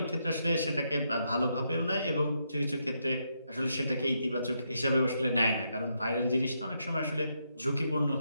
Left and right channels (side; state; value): both; inverted; correlation -0.80